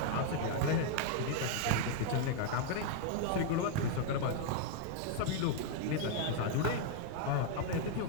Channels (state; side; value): different; both; correlation -0.01